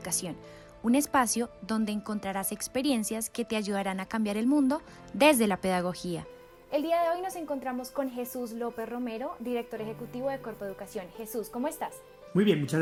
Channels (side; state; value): both; identical; correlation 1.00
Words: un espacio donde encontrarás experiencias que te ayudarán a cambiar el mundo desde la pedagogía. El día de hoy nos encontramos con Jesús López Romero, director ejecutivo de Corpo Educación. Jesús, ¿cómo estás? Muy bien, muchas